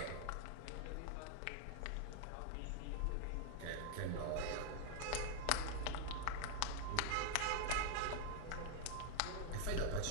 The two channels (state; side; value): different; both; correlation 0.00